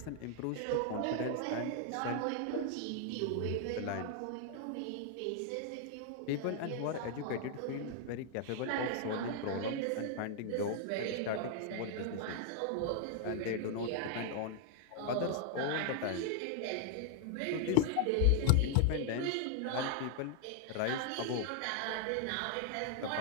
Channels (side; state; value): both; different; correlation 0.00